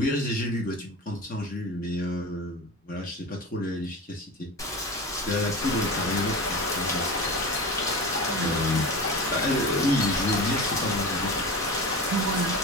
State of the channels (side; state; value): both; normal; correlation 0.29